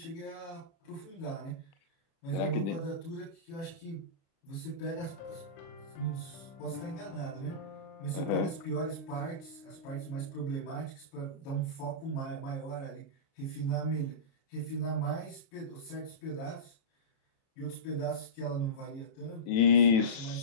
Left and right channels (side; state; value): right; late; 36 ms